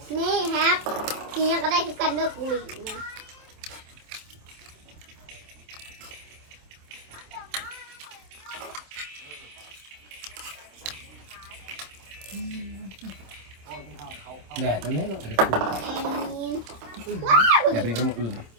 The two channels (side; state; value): left; late; 26 ms